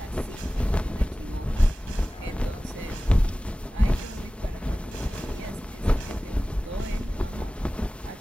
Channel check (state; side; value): normal; both; correlation 0.97